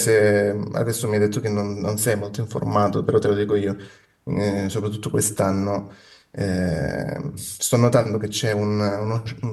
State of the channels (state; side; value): identical; both; correlation 1.00